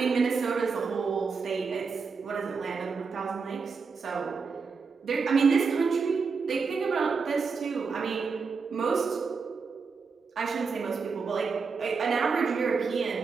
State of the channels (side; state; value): left; quieter; 5.1 dB